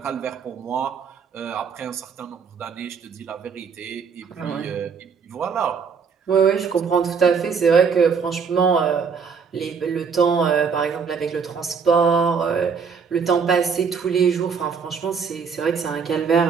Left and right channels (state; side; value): quieter; left; 5.9 dB